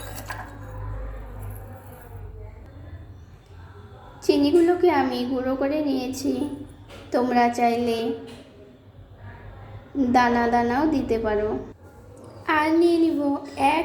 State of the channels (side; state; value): both; identical; correlation 1.00